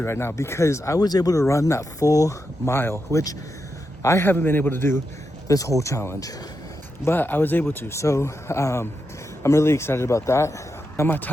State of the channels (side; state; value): both; normal; correlation 0.86